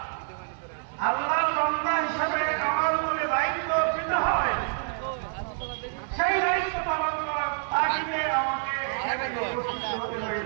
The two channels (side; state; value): left; silent; 60 dB below the other